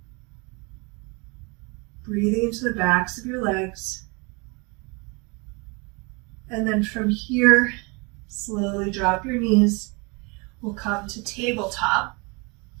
Breathing into the backs of your legs. And then from here, slowly drop your knees. We'll come to tabletop.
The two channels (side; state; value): left; quieter; 29.6 dB